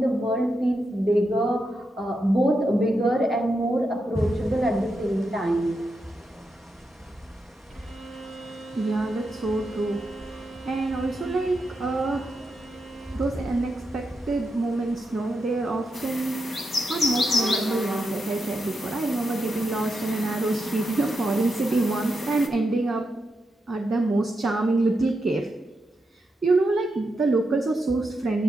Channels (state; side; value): normal; both; correlation 0.86